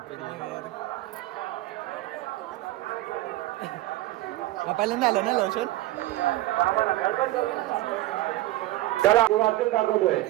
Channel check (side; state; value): left; quieter; 16.6 dB